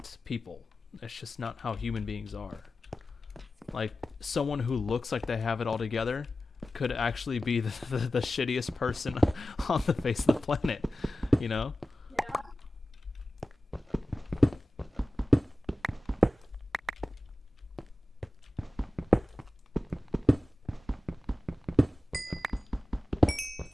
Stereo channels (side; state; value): both; normal; correlation 0.95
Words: people. It's just not how human beings are. Like someone who looks like they have it all together could actually be the shittiest person on the face of the planet, you know?